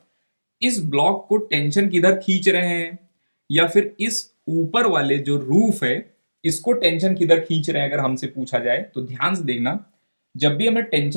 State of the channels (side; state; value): both; inverted; correlation -1.00